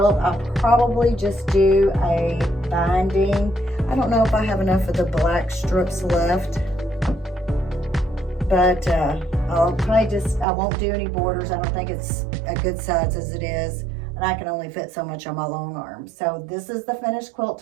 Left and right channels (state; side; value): drops out; left; at 10.5 s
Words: I'll probably just do a binding. I don't know if I have enough of the black strips left, but I'll probably just, I won't do any borders. I don't think it's a good size as it is, and I can only fit so much on my long arm. So this is the finished quilt